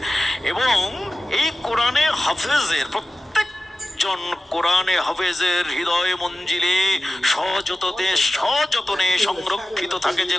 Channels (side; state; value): both; normal; correlation 0.95